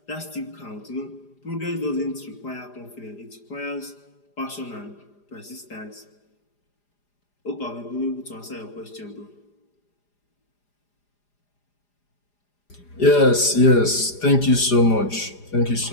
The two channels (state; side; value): late; right; 4.9 ms